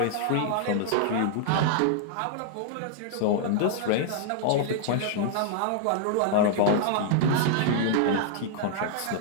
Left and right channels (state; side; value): different; both; correlation -0.01